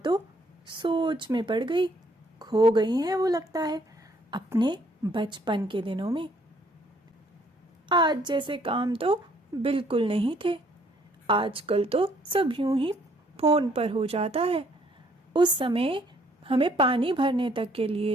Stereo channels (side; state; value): both; normal; correlation 0.65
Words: सोच में पड़ गई, खो गई हैं वो लगता है अपने बचपन के दिनों में। आज जैसे काम तो बिल्कुल नहीं थे। आजकल तो सब यूं ही फोन पर हो जाता है। उस समय हमें पानी भरने तक के